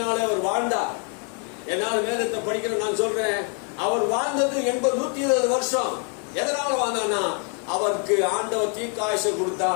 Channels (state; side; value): quieter; right; 40.0 dB